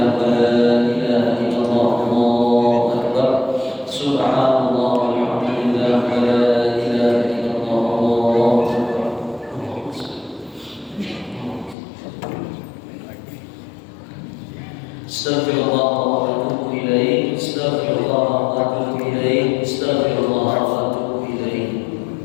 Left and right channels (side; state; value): right; drops out; at 11.8 s